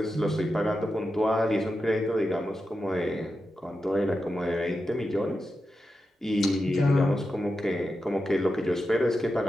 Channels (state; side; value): normal; both; correlation 0.89